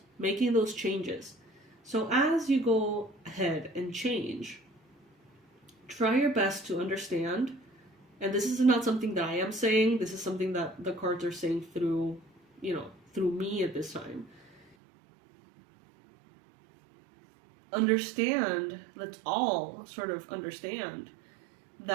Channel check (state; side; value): drops out; left; at 14.8 s